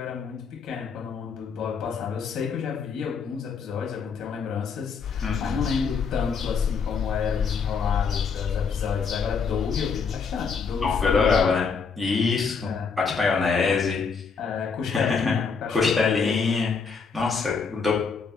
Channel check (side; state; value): right; quieter; 5.5 dB